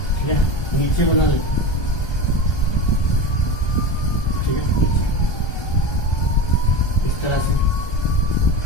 है, नीचे बना ले, ठीक है, नीचे इस तरह से,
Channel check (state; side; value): late; right; 1.3 ms